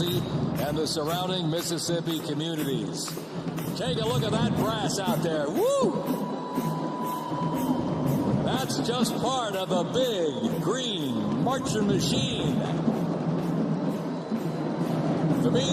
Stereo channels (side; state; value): both; identical; correlation 1.00